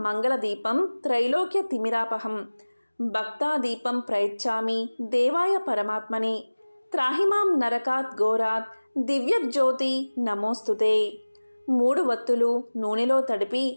మంగళదీపం త్రైలోక్య తిమిరాపహం భక్తాదీపం ప్రయచ్చామి దేవాయ పరమాత్మనే త్రాహిమాం నరకాత్ ఘోరాత్ దివ్యజ్యోతి నమోస్తుతే. 3 వత్తులు నూనెలో తడిపి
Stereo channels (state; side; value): inverted; both; correlation -1.00